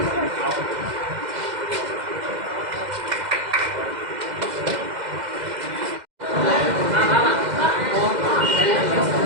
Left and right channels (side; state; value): left; late; 2.0 ms